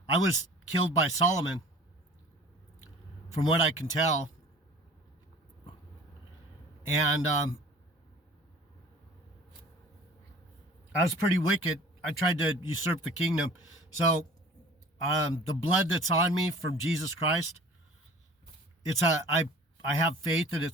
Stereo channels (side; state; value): both; normal; correlation 0.46